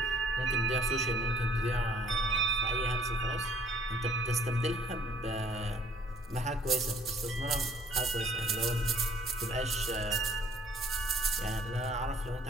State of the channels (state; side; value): normal; both; correlation 0.57